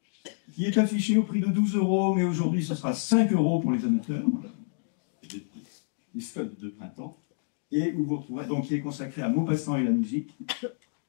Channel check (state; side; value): silent; right; digital silence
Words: qui est affiché au prix de 12 €, mais aujourd'hui ce sera 5 € pour les amateurs, voilà. Les soldes de printemps, et où vous retrouverez, donc qui est consacré à Maupassant et la musique,